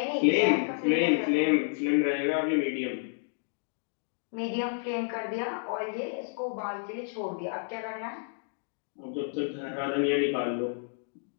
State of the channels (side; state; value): right; silent; digital silence